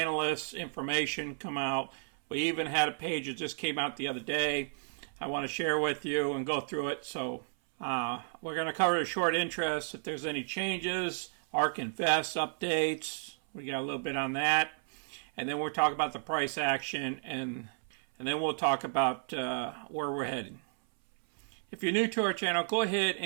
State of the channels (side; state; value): left; silent; 56 dB below the other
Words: information come out. We even had a page that just came out the other day. I want to share with you and go through it. So we're going to cover the short interest, if there's any changes, ARK Invest updates. We got a little bit on that. And then we'll talk about the price action, and then we'll talk about where we're heading. If you're new to our channel, go ahead